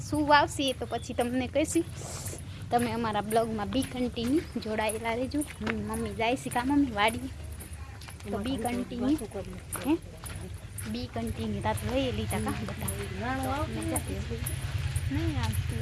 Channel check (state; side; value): identical; both; correlation 1.00